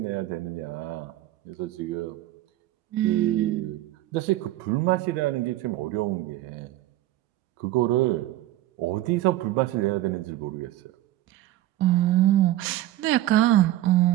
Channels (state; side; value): quieter; left; 14.9 dB